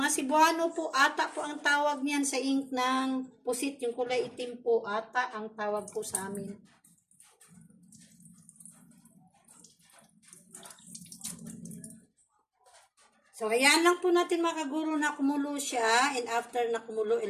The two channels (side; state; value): both; identical; correlation 1.00